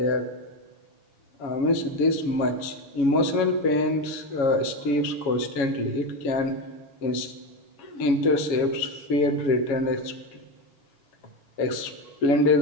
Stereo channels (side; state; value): right; late; 7.2 ms